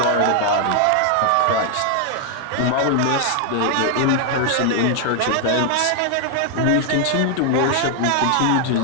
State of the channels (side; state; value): both; different; correlation 0.00